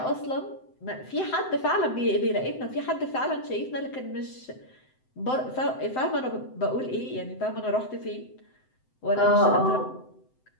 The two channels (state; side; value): late; right; 7.8 ms